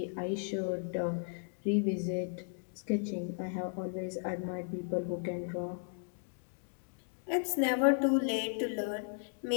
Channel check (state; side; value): silent; right; digital silence